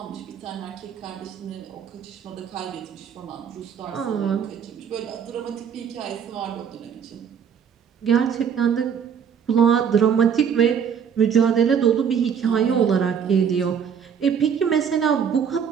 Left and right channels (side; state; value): left; quieter; 7.5 dB